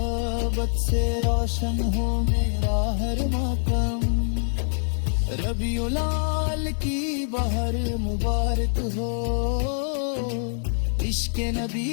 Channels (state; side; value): silent; right; digital silence